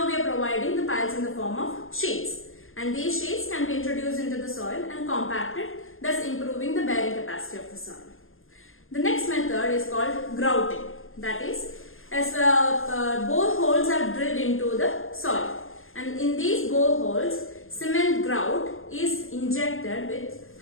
we are providing the piles in the form of sheets. And these sheets can be introduced into the soil and compacted, thus improving the bearing capacity of the soil. The next method is called grouting. That is, as boreholes are drilled into the soil. And in these boreholes, cement grout is injected with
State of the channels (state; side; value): late; right; 0.60 ms